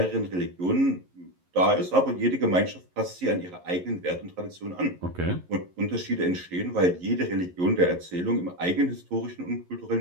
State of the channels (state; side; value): late; left; 11 ms